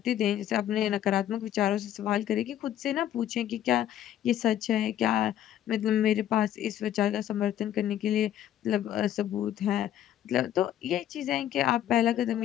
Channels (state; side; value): quieter; right; 11.5 dB